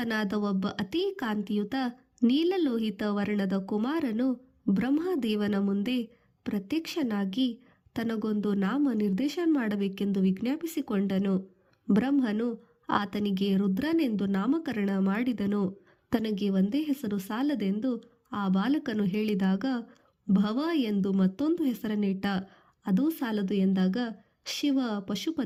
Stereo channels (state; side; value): identical; both; correlation 1.00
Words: ಒಬ್ಬ ಅತೀ ಕಾಂತಿಯುತ ನೀಲಲೋಹಿತ ವರ್ಣದ ಕುಮಾರನು ಬ್ರಹ್ಮದೇವನ ಮುಂದೆ ಪ್ರತ್ಯಕ್ಷನಾಗಿ ತನಗೊಂದು ನಾಮ ನಿರ್ದೇಶನ ಮಾಡಬೇಕೆಂದು ವಿಜ್ಞಾಪಿಸಿಕೊಂಡನು. ಬ್ರಹ್ಮನು ಆತನಿಗೆ ರುದ್ರನೆಂದು ನಾಮಕರಣ ಮಾಡಿದನು. ತನಗೆ ಒಂದೇ ಹೆಸರು ಸಾಲದೆಂದು ಆ ಬಾಲಕನು ಹೇಳಿದಾಗ ಭವ ಎಂದು ಮತ್ತೊಂದು ಹೆಸರನ್ನಿಟ್ಟ. ಅದೂ ಸಾಲದು ಎಂದಾಗ ಶಿವ,